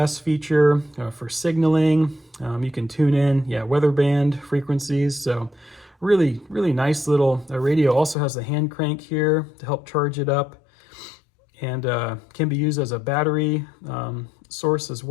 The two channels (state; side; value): drops out; right; at 8.2 s